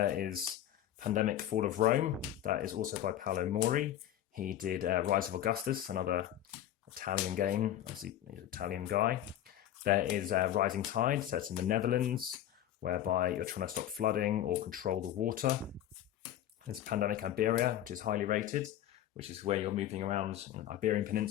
is Pandemic Fall of Rome. That is also by Paolo Mori. He did Rise of Augustus, another Italian game. Obviously, he's an Italian guy. There is Rising Tide, set in the Netherlands, whereby you're trying to stop flooding or control the water. There's Pandemic Iberia, which is highly rated, which is where you're moving around Iberian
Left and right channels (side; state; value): right; quieter; 12.0 dB